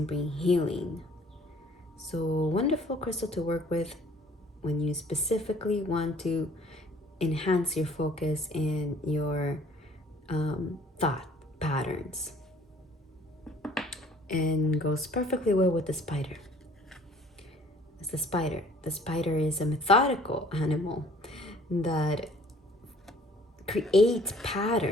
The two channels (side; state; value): both; normal; correlation 0.55